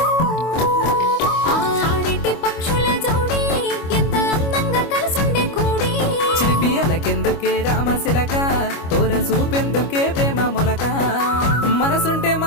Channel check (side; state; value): right; late; 25 ms